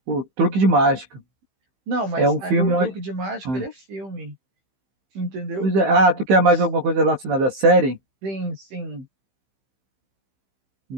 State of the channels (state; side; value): late; left; 15 ms